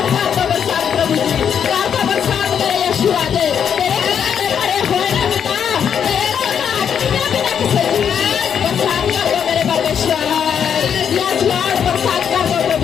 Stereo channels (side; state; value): right; quieter; 8.0 dB